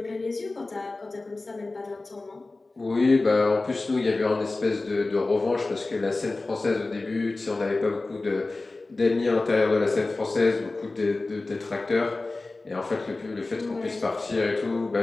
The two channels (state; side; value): quieter; right; 3.3 dB